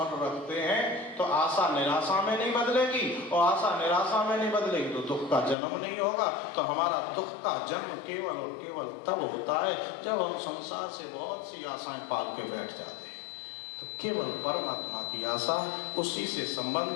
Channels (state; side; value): drops out; right; at 5.6 s